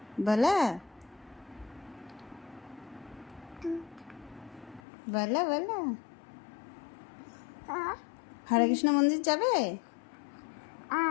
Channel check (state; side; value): drops out; right; at 4.8 s